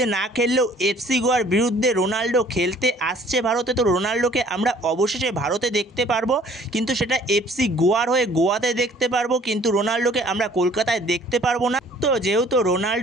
না খেললেও এফসি গোয়ার বিরুদ্ধে রোনাল্ডো খেলতে আসছে ভারতে। তো রোনাল্ডোকে আমরা অবশেষে ভারতে দেখতে পারবো, কিন্তু সেটা এফসি গোয়ার হয়ে গোয়াতে দেখতে পারবো, কিন্তু রোনাল্ডোকে আমরা কলকাতায় দেখতে পারবো না। তো যেহেতু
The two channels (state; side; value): normal; both; correlation 0.55